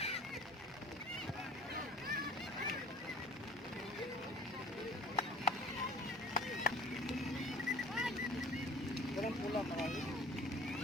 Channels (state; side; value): normal; both; correlation 0.47